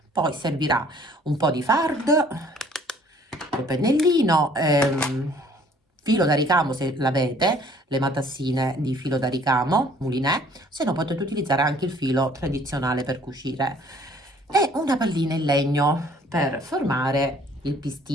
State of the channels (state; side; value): normal; both; correlation 0.57